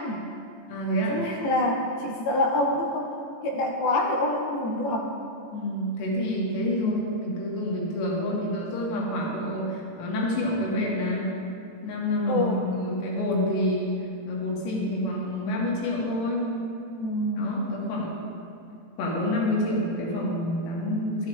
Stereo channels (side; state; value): right; late; 18 ms